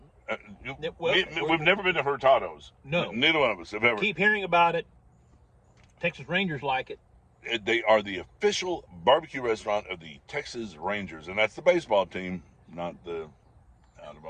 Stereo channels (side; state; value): both; identical; correlation 1.00